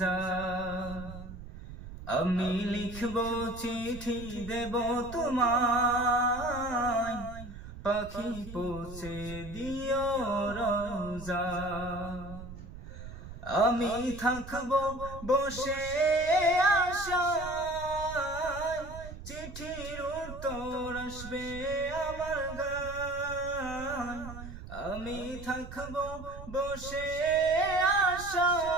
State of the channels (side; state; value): right; noise; rumble, 12 dB below the sound